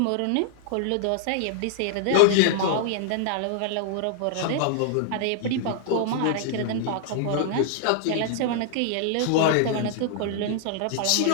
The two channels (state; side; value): different; both; correlation -0.01